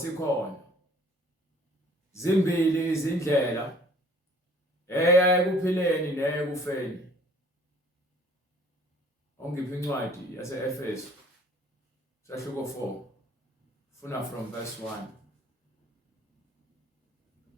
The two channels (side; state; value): both; normal; correlation 0.55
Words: zimbili izindlela eya ekuphileni neyekufeni. Ongiphi incwadi yase-Efeso sahluko 4 funa from verse 1.